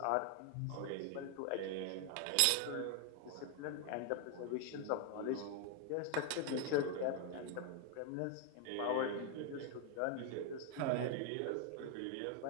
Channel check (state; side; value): different; both; correlation 0.00